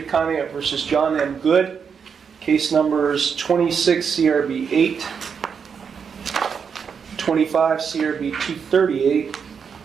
Conneaut versus John M. Good. Case numbers 26 CRB 8, 25 CRB 238,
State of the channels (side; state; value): left; quieter; 6.5 dB